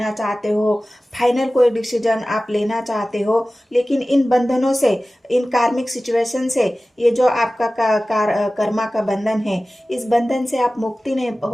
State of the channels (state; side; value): normal; both; correlation 0.97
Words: चाहते हो, फाइनल कोई डिसीजन आप लेना चाहते हो, लेकिन इन बंधनों से, इन कार्मिक सिचुएशन से, ये जो आपका कर्मा का बंधन है, इस बंधन से आप मुक्ति नहीं